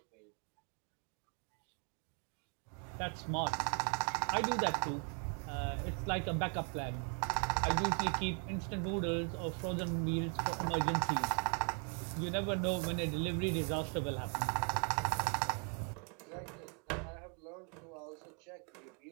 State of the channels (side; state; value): left; quieter; 39.9 dB